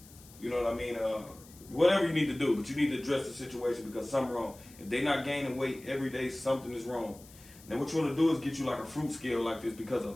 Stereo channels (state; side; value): noise; left; hiss, 22 dB below the sound